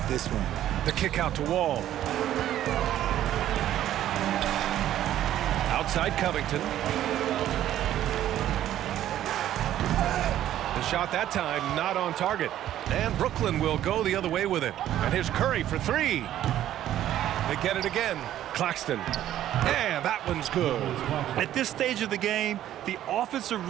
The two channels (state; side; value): quieter; left; 12.2 dB